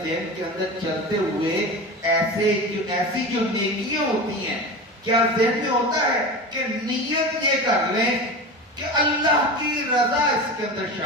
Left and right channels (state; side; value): normal; both; correlation 0.28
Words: ذہن کے اندر چلتے ہوئے ایسی جو نیکیاں ہوتی ہیں، کیا ذہن میں ہوتا ہے کہ نیت یہ کر لیں کہ اللہ کی رضا اس کے اندر